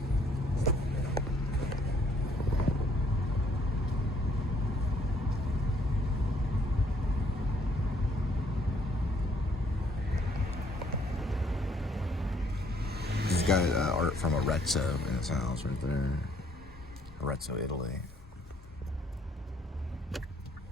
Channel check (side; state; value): both; normal; correlation 0.65